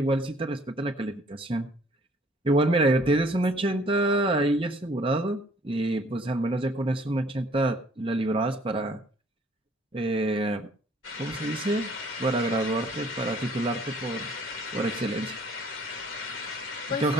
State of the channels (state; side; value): normal; both; correlation 0.58